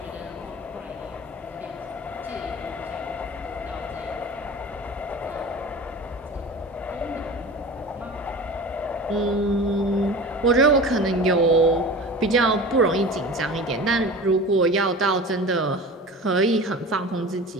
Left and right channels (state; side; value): normal; both; correlation 0.35